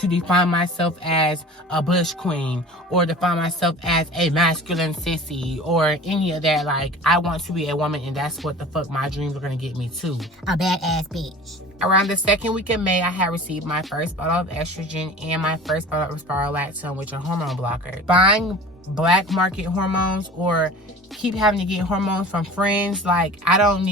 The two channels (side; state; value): both; normal; correlation 0.40